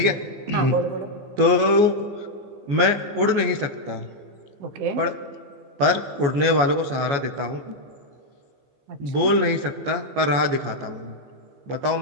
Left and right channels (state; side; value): late; left; 14 ms